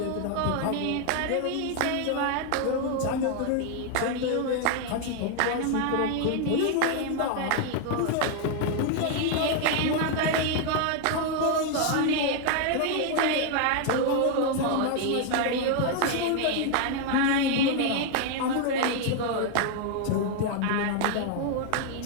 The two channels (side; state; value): both; different; correlation 0.00